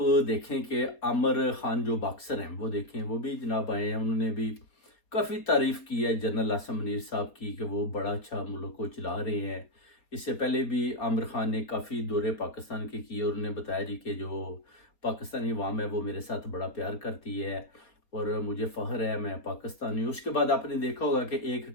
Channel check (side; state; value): right; late; 4.3 ms